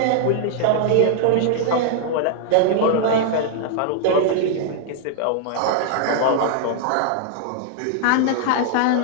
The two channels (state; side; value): different; both; correlation -0.01